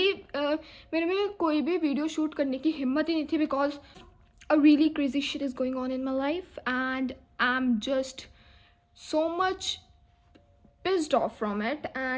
मेरे में कोई भी वीडियो शूट करने की हिम्मत ही नहीं थी because a really crazy shit is going on in my life and I'm just so much pissed off from it,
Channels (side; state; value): both; identical; correlation 1.00